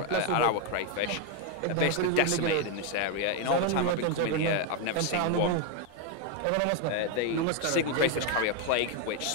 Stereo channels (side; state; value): both; different; correlation 0.01